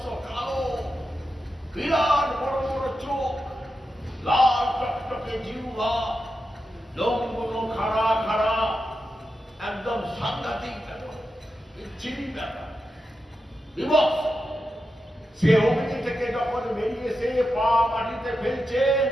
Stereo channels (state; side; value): normal; both; correlation 0.89